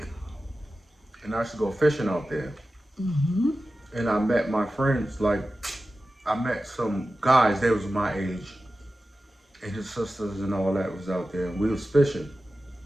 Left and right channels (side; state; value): both; normal; correlation 0.94